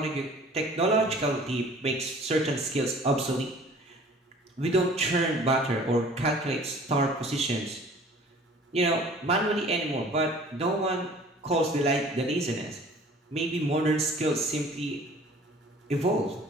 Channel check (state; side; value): normal; both; correlation 0.49